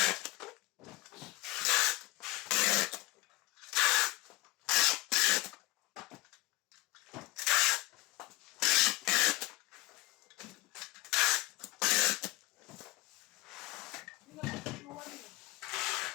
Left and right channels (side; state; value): right; quieter; 21.0 dB